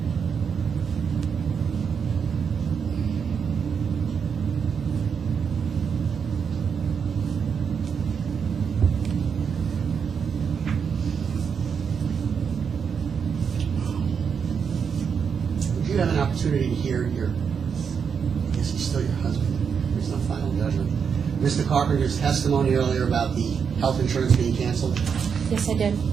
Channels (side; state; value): left; quieter; 6.6 dB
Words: Would you have an opportunity to hear your, I guess he's still your husband, there's no final judgment, Mr. Carpenter's testimony earlier about the health insurance being canceled? Yes, I did.